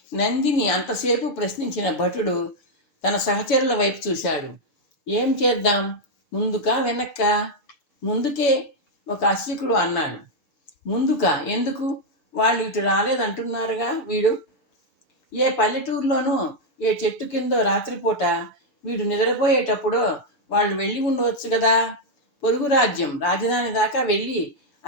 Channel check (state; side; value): late; right; 7.0 ms